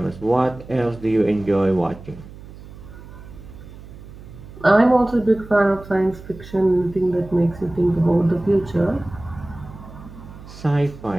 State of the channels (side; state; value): right; noise; hum, 17 dB below the sound